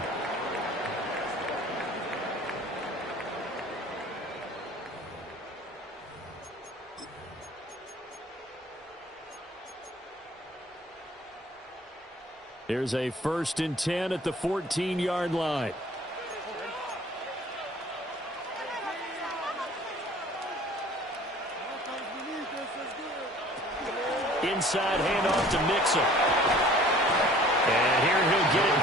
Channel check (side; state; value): both; normal; correlation 0.50